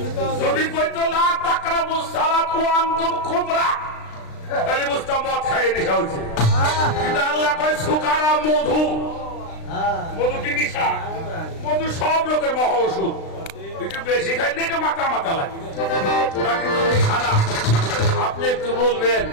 যদি কইতো লা তাকরাবুস সালাত ওয়া আনতুম খুমরা, তাহলে বুঝতাম মদ খাইয়ে নেশা হয়েছে। কিন্তু আল্লাহ কয় সুকারা মধু। মধু কি নেশা? মধু সব লোকের মহা ওষুধ। একটু বেশি খাইলে একটু মাথা মাথা লাগে, ওটা কিন্তু নেশা না। আপনি একটু বলবেন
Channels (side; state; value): right; late; 36 ms